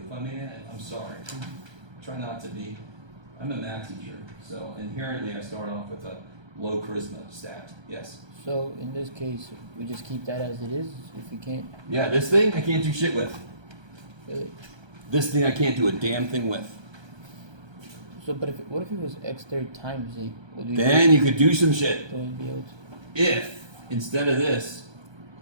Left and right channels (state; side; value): late; left; 1.3 ms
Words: If I'm in, I'm sorry. Try not to be. I'm a math teacher, so inherently I start off with a low charisma stat. Yes? So in this case, we just keep that as it is if we can't. Yeah, this thing I can't do shit with. Really? This thing I can't do a damn thing with. So, but what if it was x third times 8? Would we Then you could do some shit. would we be able to? If, instead of this,